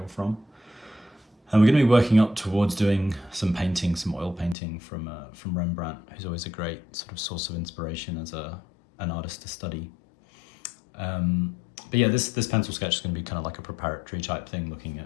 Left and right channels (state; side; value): drops out; right; at 4.5 s